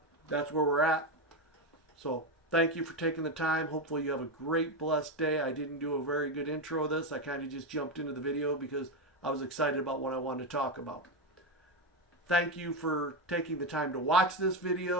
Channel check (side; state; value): both; normal; correlation 0.10